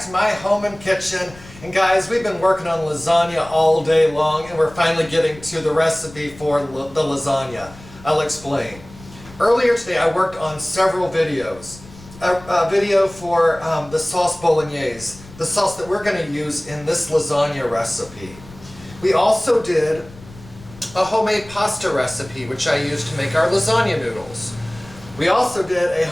to my home and kitchen. And guys, we've been working on lasagna all day long and we're finally getting to the recipe for the lasagna. I'll explain. Earlier today I worked on several videos. A video for the sauce bolognese, the sauce that we're going to use in this lasagna recipe. We also did a homemade pasta recipe which I used to make our lasagna noodles. We also did a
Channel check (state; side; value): noise; left; rumble, 20 dB below the sound